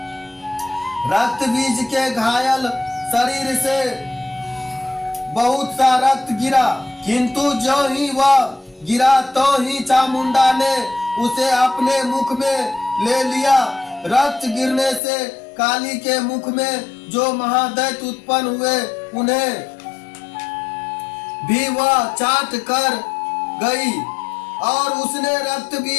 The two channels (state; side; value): drops out; right; at 15.0 s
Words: रक्त बीज के घायल शरीर से बहुत सा रक्त गिरा, किंतु जो ही वह गिरा तो ही चामुंडा ने उसे अपने मुख में ले लिया। रक्त गिरने से काली के मुख में जो महादैत्य उत्पन्न हुए उन्हें भी वह चाट कर गई और उसने रक्त